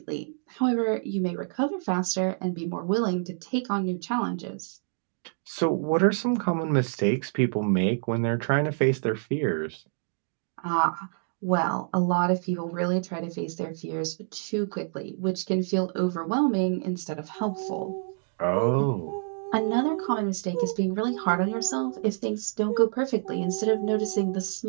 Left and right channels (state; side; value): silent; left; digital silence